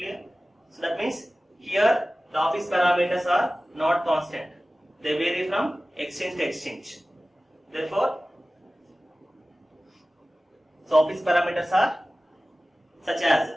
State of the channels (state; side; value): normal; both; correlation 0.97